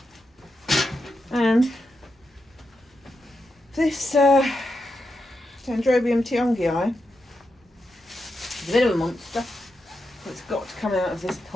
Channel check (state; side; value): normal; both; correlation 0.86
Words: and this Dendrobium tiongii is a bit of a monster. It's got to come out of this